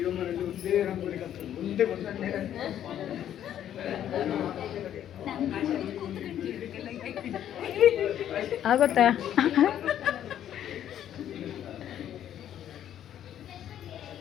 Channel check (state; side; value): quieter; right; 10.6 dB